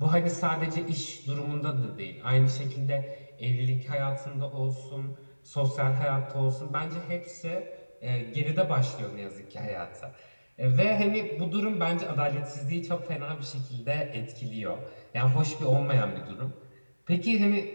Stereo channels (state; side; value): inverted; both; correlation -1.00